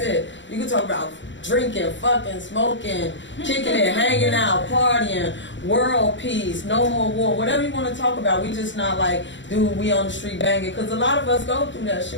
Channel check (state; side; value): late; right; 0.54 ms